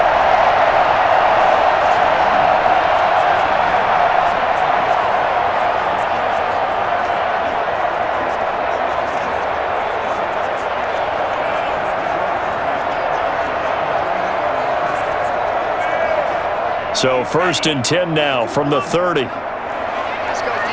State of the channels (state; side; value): identical; both; correlation 1.00